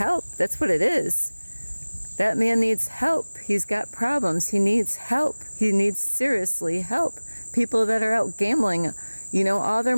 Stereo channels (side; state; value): both; inverted; correlation -1.00